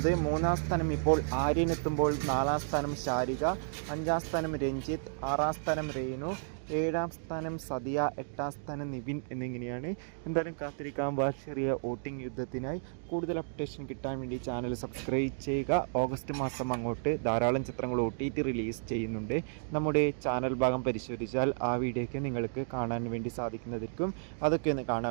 3-ാം സ്ഥാനം ഇപ്പോൾ ആര്യനെത്തുമ്പോൾ 4-ാം സ്ഥാനം ശാരിക, 5-ാം സ്ഥാനം രഞ്ജിത്ത്, 6-ാം സ്ഥാനം രേണു, 7-ാം സ്ഥാനം സദിയ, 8-ാം സ്ഥാനം നിവിൻ എന്നിങ്ങനെയാണ്. എന്തായാലും കാത്തിരിക്കാം ചെറിയ വോട്ടിംഗ് യുദ്ധത്തിനായി. കൂടുതൽ അപ്ഡേഷൻ കിട്ടാൻ വേണ്ടി ചാനൽ സബ്സ്ക്രൈബ് ചെയ്യുക. ഓഗസ്റ്റ് മാസം അങ്ങോട്ട് ധാരാളം ചിത്രങ്ങൾ OTT റിലീസ് ചെയ്യുന്നുണ്ട്. നമ്മുടെ ചാനൽ ഭാഗം പരിശോധിച്ചാൽ ആ വീഡിയോയ്ക്ക് നിങ്ങൾക്ക് കാണാൻ വേണ്ടി സാധിക്കുന്നതായിരിക്കും. അതൊക്കെ ഒന്ന്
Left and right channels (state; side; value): silent; left; digital silence